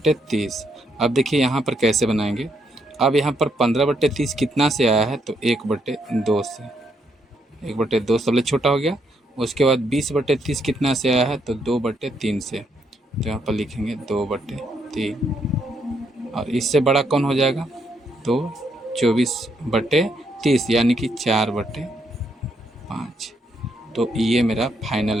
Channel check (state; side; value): normal; both; correlation 0.76